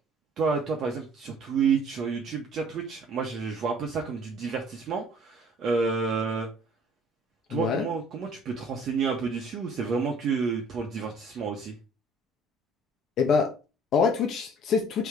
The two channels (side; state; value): both; normal; correlation 0.54